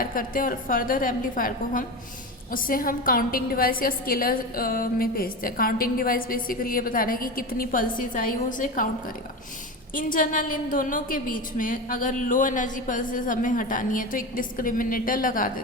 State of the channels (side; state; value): both; normal; correlation 0.23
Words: करते हैं और फर्दर एम्पलीफायर को उससे हम काउंटिंग डिवाइस या स्केलर में भेजते हैं. काउंटिंग डिवाइस बेसिकली ये बता रहा है कि कितनी पल्सेस आई वो उसे काउंट करेगा. इन जनरल इन दोनों के बीच में अगर लो एनर्जी पल्सेस हमें हटानी है तो एक डिस्क्रिमिनेटर लगा